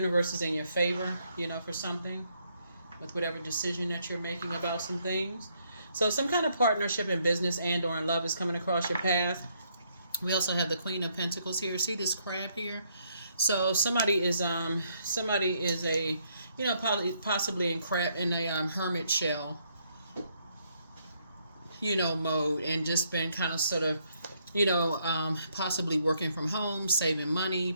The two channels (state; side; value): inverted; both; correlation -0.72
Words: is in your favor, for something, with whatever decision that you're making about some things. So some kind of partnership in business and or in love is coming across your path. We also have the Queen of Pentacles here. See this crab here? So somebody is a, possibly in a hermit shell, mode, and just been kind of sort of, possibly working from home, saving money,